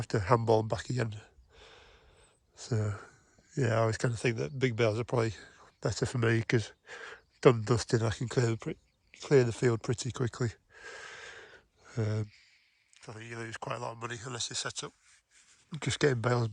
to handball them back again. So yeah, I always kind of think that big bales are probably better for me because done and dusted, I can clear the field pretty quickly. I think you lose quite a lot of money unless you set up just getting bales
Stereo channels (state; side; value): identical; both; correlation 1.00